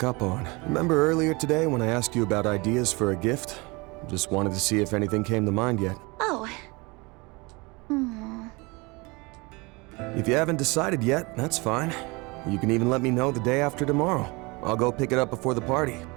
up on. Remember earlier today when I asked you about ideas for a gift? Just wanted to see if anything came to mind yet. Oh. If you haven't decided yet, that's fine. You can even let me know the day after tomorrow. I'll go pick it up before the party.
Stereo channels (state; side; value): quieter; left; 26.2 dB